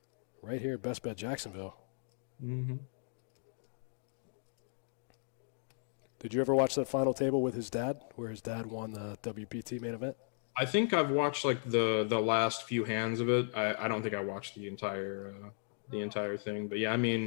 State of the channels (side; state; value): right; silent; digital silence